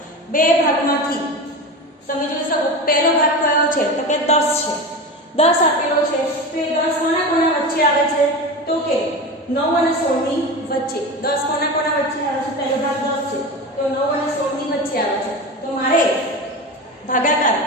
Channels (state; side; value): normal; both; correlation 0.26